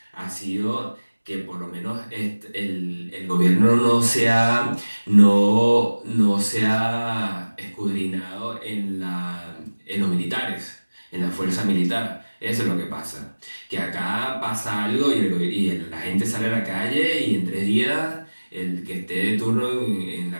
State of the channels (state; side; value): inverted; both; correlation -1.00